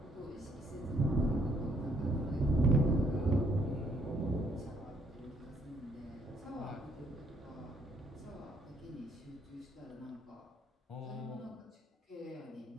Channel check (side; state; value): both; normal; correlation 0.69